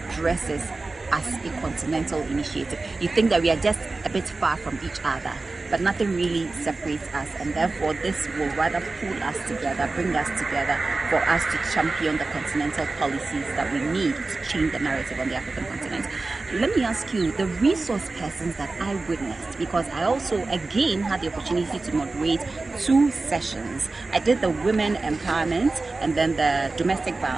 this as a continental initiative. You think that we are just a bit far from each other, but nothing really separates us, and therefore this will rather pull us together, bring us together for us to champion the continental policies that we need to change the narrative on the African continent. Let me ask you, the resource persons that I witnessed, because I also again had the opportunity to moderate 2 sessions. I did the women empowerment and then the domestic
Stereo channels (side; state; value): left; quieter; 3.5 dB